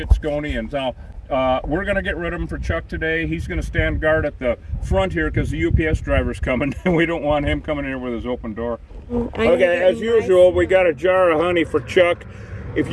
sconians. Now, we're going to get rid of him for Chuck today. He's going to stand guard at the front here because the UPS driver's coming, and we don't want him coming in here with his open door. Okay, as usual, we got a jar of honey for Chuck. If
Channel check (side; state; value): both; identical; correlation 1.00